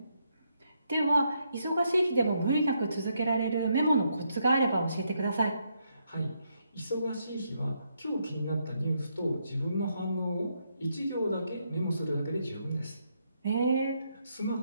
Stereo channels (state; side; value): inverted; both; correlation -0.78